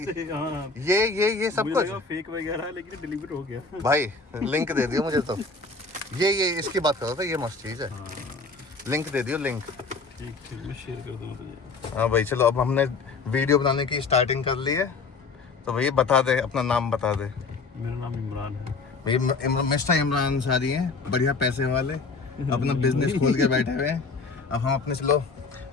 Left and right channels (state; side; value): quieter; right; 4.2 dB